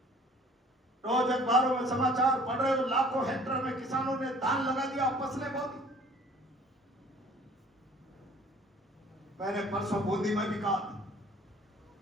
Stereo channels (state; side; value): normal; both; correlation 0.52